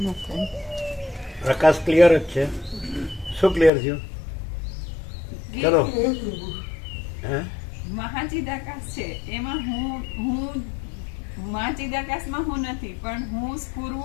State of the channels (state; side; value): drops out; right; at 3.7 s